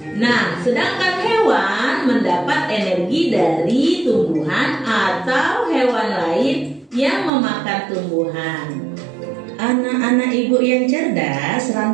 Nah, sedangkan hewan mendapat energi dari tumbuhan atau hewan lain yang memakan tumbuhan. Anak-anak ibu yang cerdas,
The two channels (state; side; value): drops out; left; at 7.3 s